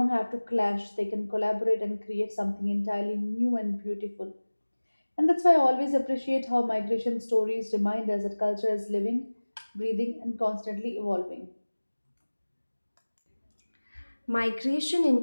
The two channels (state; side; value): inverted; both; correlation -1.00